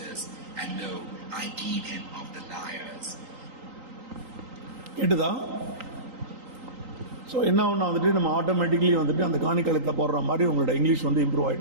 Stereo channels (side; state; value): left; late; 3.8 ms